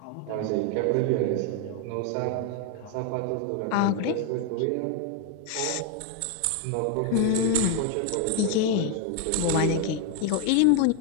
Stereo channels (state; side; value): different; both; correlation 0.01